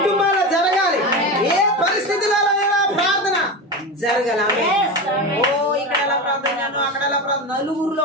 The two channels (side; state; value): both; normal; correlation 0.22